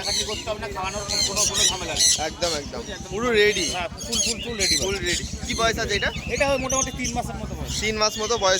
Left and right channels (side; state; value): both; identical; correlation 1.00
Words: করতে হবে না, খাওয়ানোর কোনো ঝামেলা নেই। একদম একদম পুরো রেডি, হ্যাঁ ফুল ফুল ফুল রেডি। Full ready. কি বয়স আছে এটা? এটা মোটামুটি 3 মাসের মতো বয়স। 3 মাস মতো